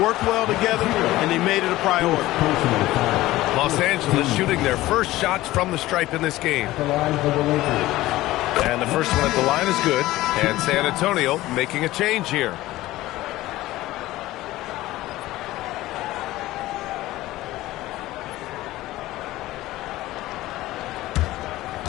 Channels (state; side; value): quieter; right; 16.9 dB